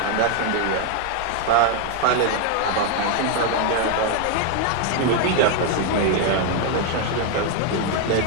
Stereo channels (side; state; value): both; different; correlation 0.01